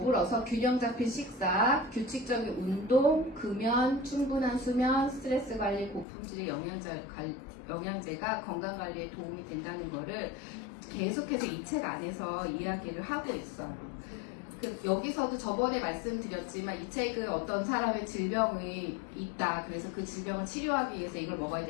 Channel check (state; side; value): drops out; right; at 6.1 s